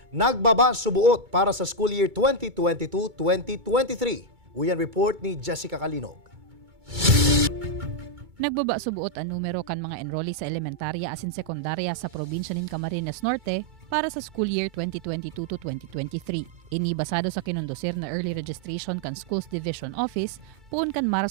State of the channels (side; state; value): left; late; 2.2 ms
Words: nagbaba subuot para sa school year 2022-2023. Uyan report ni Jessica Kalinog. Nagbaba subuot ang numero kan mga enrollee sa elementarya asin sekundarya sa probinsya nin Camarines Norte para sa school year 2022 to 2023. Ini basado sa kinundosir na early registration kan Schools Division Office puun kan